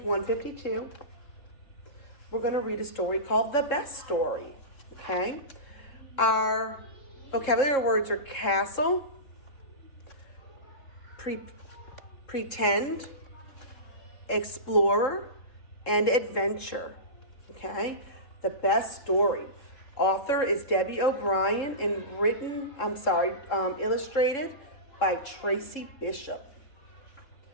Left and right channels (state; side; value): late; right; 3.7 ms